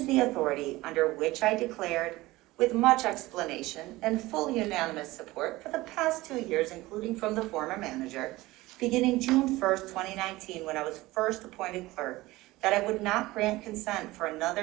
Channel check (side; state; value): left; quieter; 19.1 dB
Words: the authority under which I declared, with much explanation and full unanimous support for the past 2 years, including from the former manager, beginning June 1st, 2019, when I was first appointed clerk, that I would not grant consent for